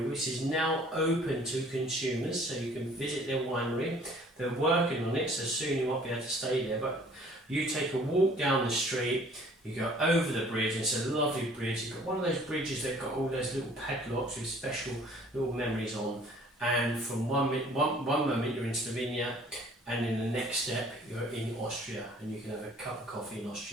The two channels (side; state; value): both; normal; correlation 0.54